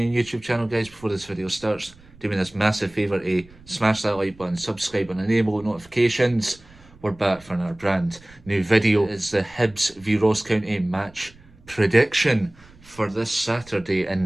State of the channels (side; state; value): right; noise; rumble, 25 dB below the sound